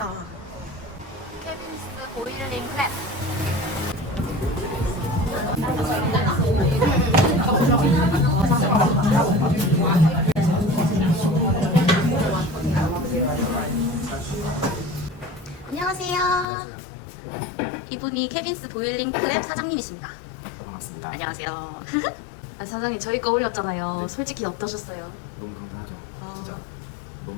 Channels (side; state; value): right; drops out; at 16.4 s